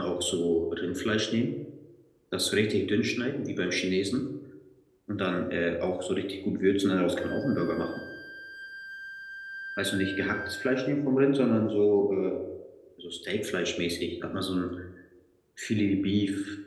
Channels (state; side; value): identical; both; correlation 1.00